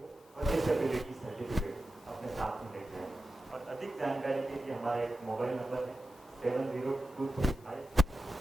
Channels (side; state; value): both; normal; correlation 0.92